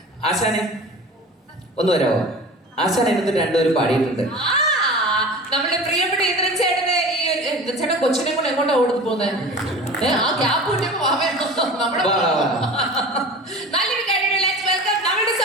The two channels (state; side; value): normal; both; correlation 0.36